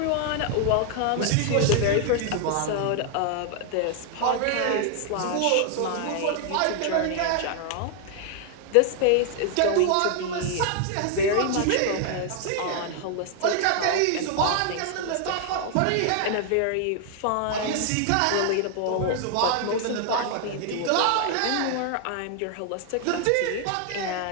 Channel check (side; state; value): both; different; correlation 0.00